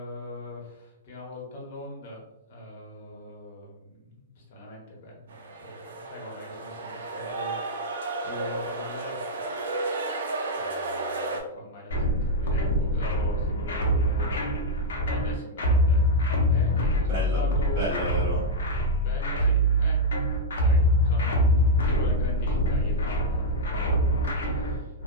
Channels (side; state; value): both; normal; correlation -0.03